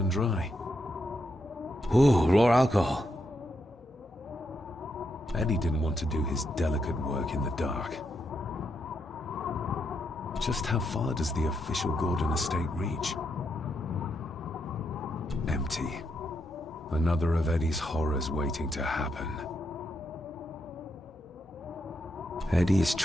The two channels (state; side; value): normal; both; correlation 0.81